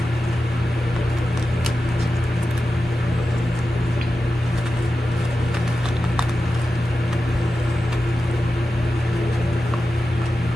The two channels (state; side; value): normal; both; correlation 0.92